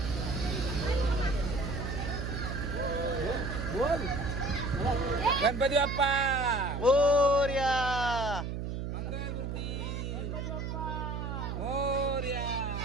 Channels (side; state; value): right; noise; hum, 4 dB below the sound